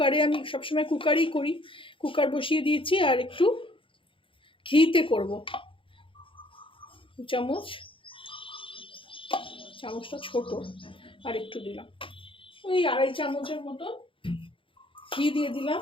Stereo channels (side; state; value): right; late; 0.25 ms